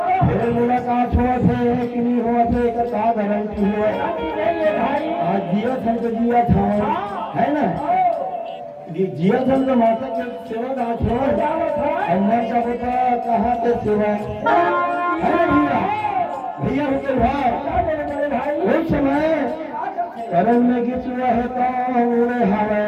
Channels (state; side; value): identical; both; correlation 1.00